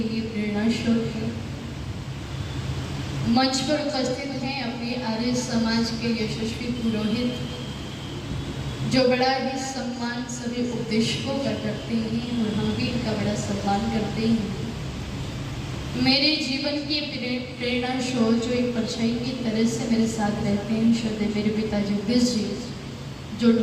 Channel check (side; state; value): both; identical; correlation 1.00